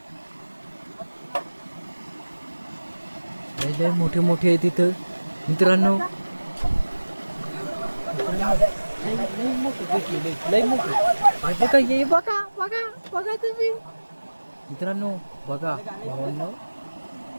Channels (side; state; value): both; inverted; correlation -1.00